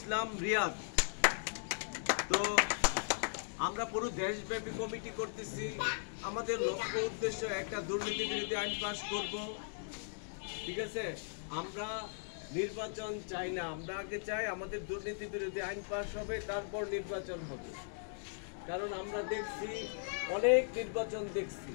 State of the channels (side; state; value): right; silent; digital silence